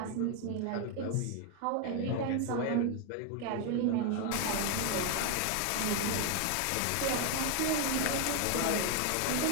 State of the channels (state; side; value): different; both; correlation 0.01